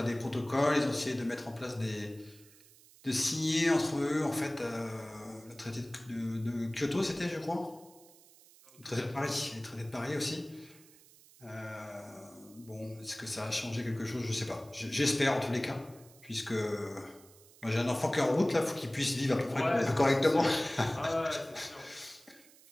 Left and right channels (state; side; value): noise; right; hiss, 24 dB below the sound